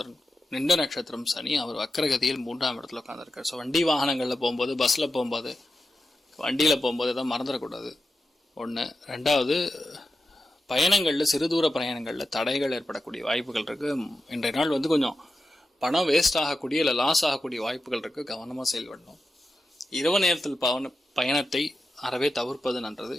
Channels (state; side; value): normal; both; correlation 0.91